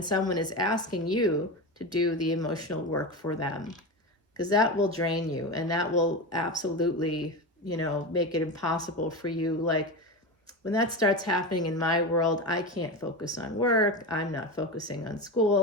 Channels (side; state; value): both; normal; correlation 0.21